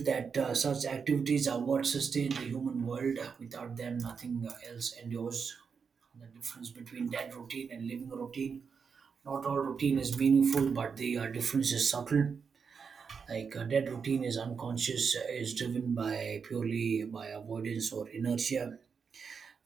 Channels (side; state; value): left; quieter; 5.9 dB